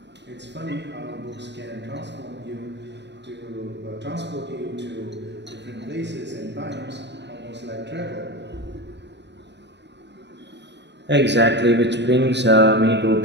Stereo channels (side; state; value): left; late; 0.51 ms